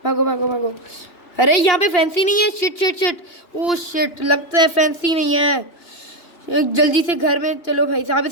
भागो भागो भागो। अरे यहाँ पे फैंसी नहीं है। Shit shit shit. Oh shit लगता है फैंसी नहीं है। जल्दी से घर में चलो भाई साहब,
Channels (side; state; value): right; late; 2.9 ms